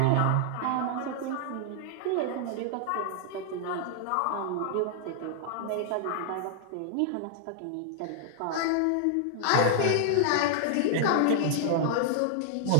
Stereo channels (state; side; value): different; both; correlation -0.01